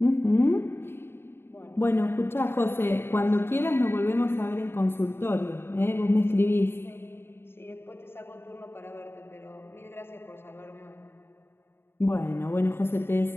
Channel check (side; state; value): right; late; 0.11 ms